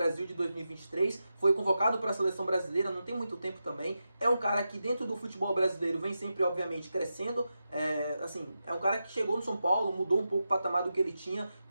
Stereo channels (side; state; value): both; inverted; correlation -0.90